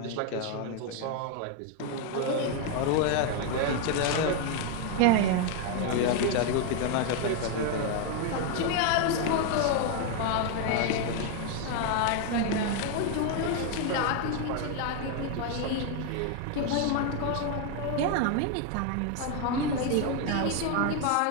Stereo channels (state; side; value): different; both; correlation 0.01